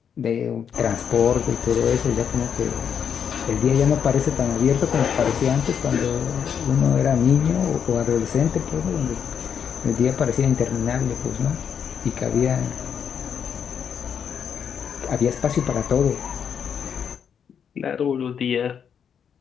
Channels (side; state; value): right; quieter; 7.7 dB